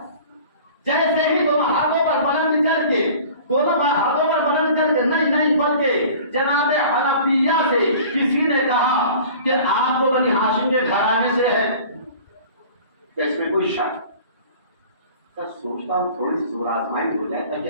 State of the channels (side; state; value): both; inverted; correlation -0.45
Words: جیسے ہی دونوں ہاتھوں پر بلند کر کے نہیں بلکہ جناب حنفیہ سے کسی نے کہا کہ آپ کو بنی ہاشم کے گھرانے سے ہے، کہ اس میں کوئی شک؟ سوچتا ہوں تھوڑی سی زور آزمائی ہو جائے